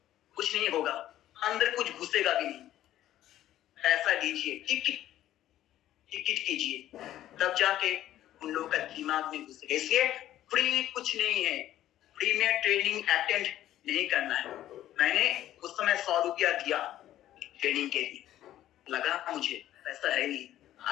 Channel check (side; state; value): right; quieter; 13.0 dB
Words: कुछ नहीं होगा, अंदर कुछ घुसेगा भी नहीं। पैसा दीजिए, टिकट कीजिए, तब जाके उन लोगों का दिमाग में घुसेगा। इसलिए फ्री कुछ नहीं है, फ्री में ट्रेनिंग अटेंड नहीं करना है। मैंने उस समय 100 रुपया दिया ट्रेनिंग के लिए, लगा मुझे पैसा है नहीं,